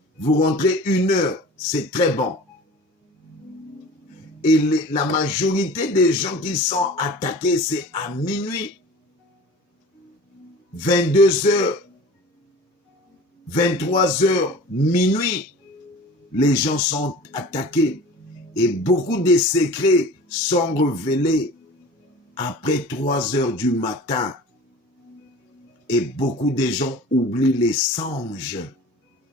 vous rentrez 1h, c'est très bon. Et la majorité des gens qui sont attaqués, c'est à minuit, 22h, 23h, minuit, les gens sont attaqués. Et beaucoup de secrets sont révélés après 3h du matin. Et beaucoup de gens oublient les songes.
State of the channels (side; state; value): both; normal; correlation 0.40